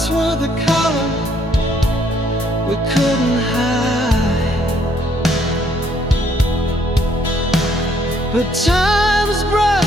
were the color we couldn't hide, but time's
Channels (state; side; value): normal; both; correlation 0.67